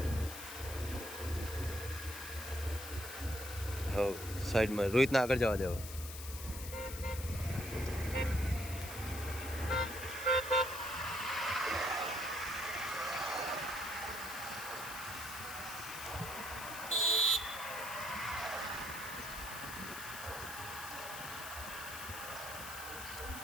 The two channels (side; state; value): left; noise; hiss, 10 dB below the sound